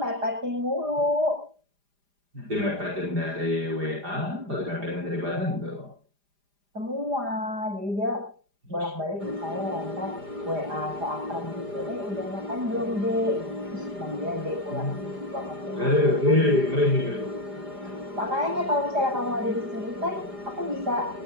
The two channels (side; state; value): left; late; 4.9 ms